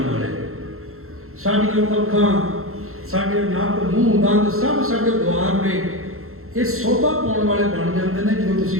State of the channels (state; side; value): late; left; 0.62 ms